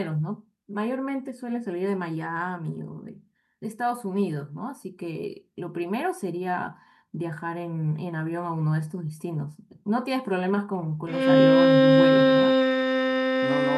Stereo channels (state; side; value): identical; both; correlation 1.00